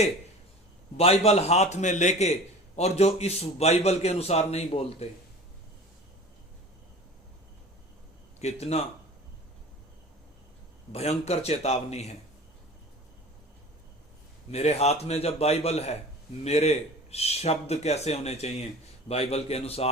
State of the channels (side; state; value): both; normal; correlation 0.40